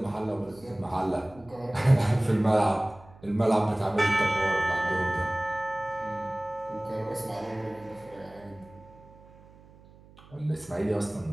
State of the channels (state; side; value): noise; right; hum, 24 dB below the sound